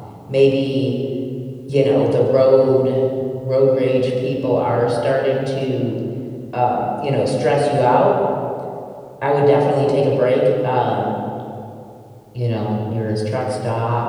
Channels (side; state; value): both; identical; correlation 1.00